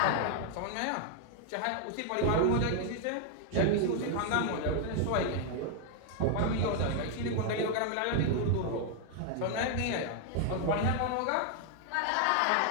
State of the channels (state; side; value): different; both; correlation 0.00